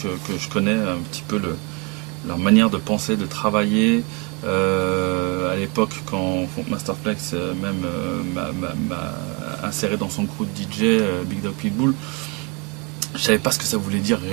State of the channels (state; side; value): quieter; left; 30.9 dB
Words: je connais un petit peu leur manière de penser, de travailler. À l'époque, quand Funk Masterflex même m'a inséré dans son crew de DJ, Big Dog Pitbull, je savais pas ce que ça voulait dire